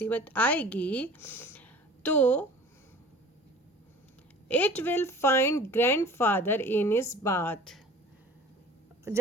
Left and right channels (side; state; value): both; normal; correlation 0.44